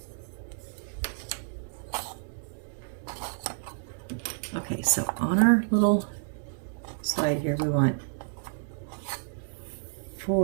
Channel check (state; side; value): silent; left; digital silence